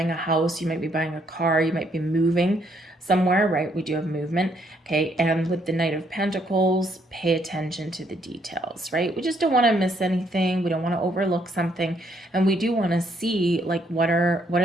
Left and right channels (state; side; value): normal; both; correlation 0.71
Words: a house, you might be buying a car, you might be moving somewhere, right? We do have movement, okay? And with the Knight of Pentacles, pay attention to the details, right? We just don't want to miss anything. We don't want to overlook something, and we do want to see like what are